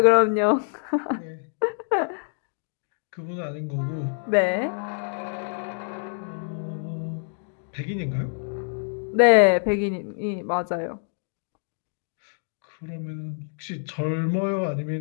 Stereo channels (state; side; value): silent; right; digital silence